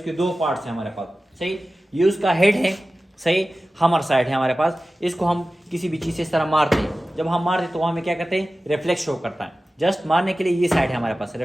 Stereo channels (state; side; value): normal; both; correlation 0.95